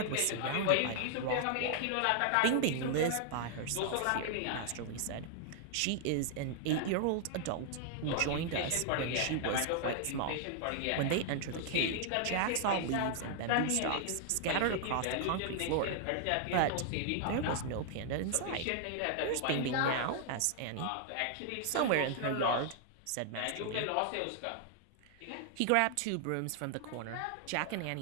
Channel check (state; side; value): different; both; correlation 0.00